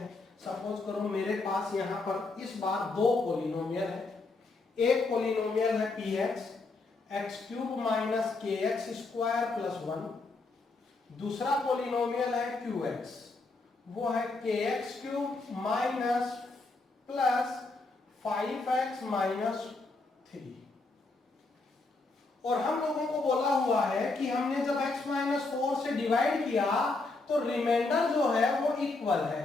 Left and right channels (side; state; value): right; quieter; 3.5 dB